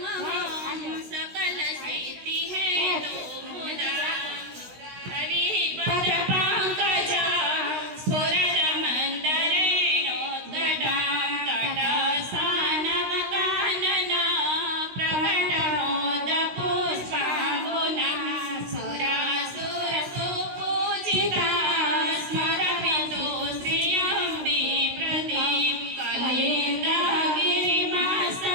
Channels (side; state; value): left; late; 16 ms